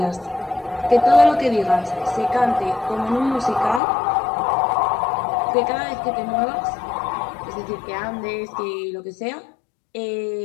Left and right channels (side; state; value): right; drops out; at 3.8 s